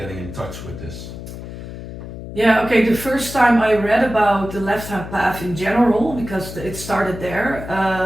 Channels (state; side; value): noise; left; hum, 11 dB below the sound